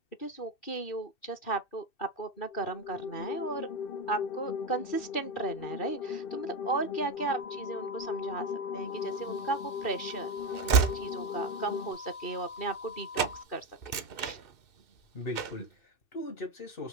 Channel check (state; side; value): late; right; 2.6 ms